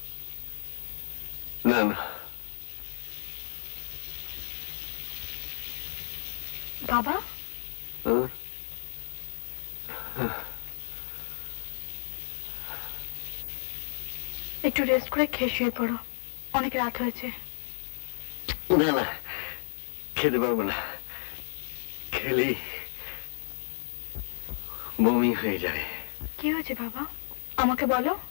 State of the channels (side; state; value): right; silent; 56 dB below the other